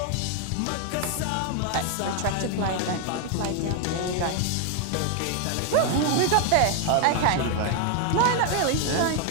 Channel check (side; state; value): both; different; correlation 0.00